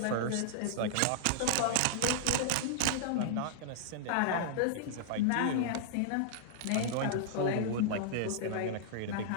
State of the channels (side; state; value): both; different; correlation -0.01